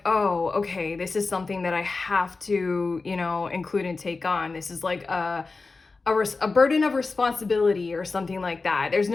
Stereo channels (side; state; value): right; quieter; 3.9 dB